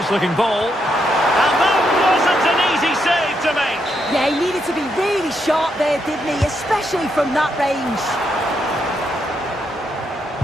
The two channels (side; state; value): both; normal; correlation 0.79